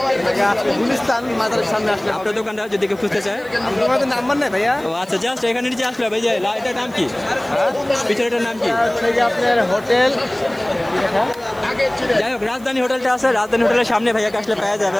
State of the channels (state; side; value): noise; right; hiss, 25 dB below the sound